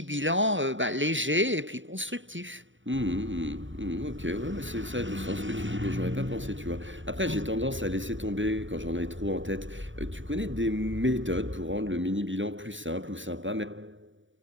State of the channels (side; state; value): left; late; 0.55 ms